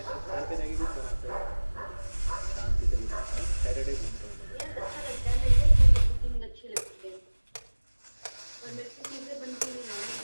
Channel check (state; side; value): inverted; both; correlation -1.00